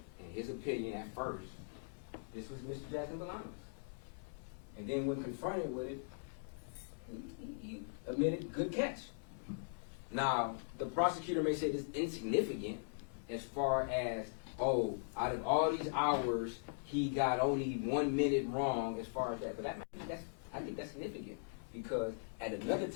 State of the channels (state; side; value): silent; right; digital silence